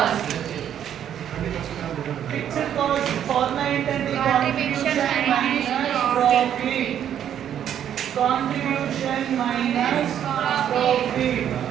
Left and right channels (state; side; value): quieter; left; 9.8 dB